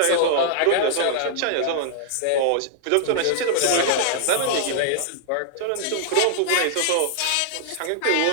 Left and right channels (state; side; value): different; both; correlation -0.01